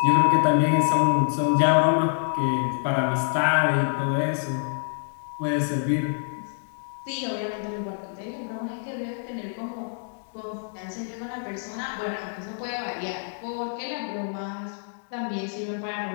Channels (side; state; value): right; silent; digital silence